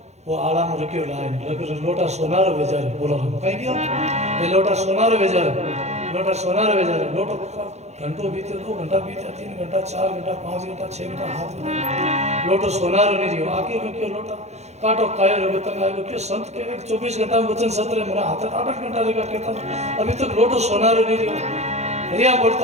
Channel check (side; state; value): left; late; 0.32 ms